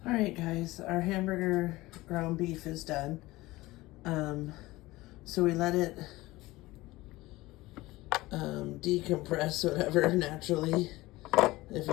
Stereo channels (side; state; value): right; quieter; 19.3 dB